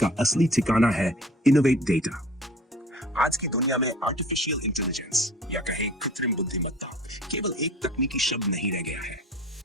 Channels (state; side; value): normal; both; correlation 0.45